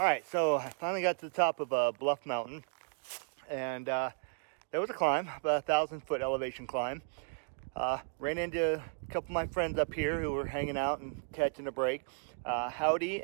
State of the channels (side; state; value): left; silent; digital silence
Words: right, so I finally got to the top of Bluff Mountain, and there was a climb, about 1,000-foot elevation climb. Ran into a couple of my friends up here who were hanging out and catching a break. Howdy